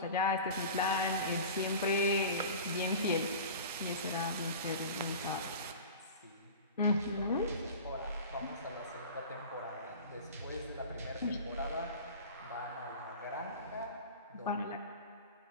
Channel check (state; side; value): inverted; both; correlation -0.36